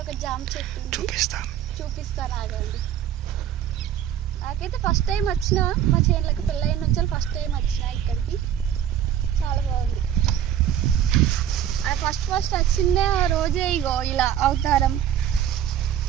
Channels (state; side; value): quieter; left; 10.2 dB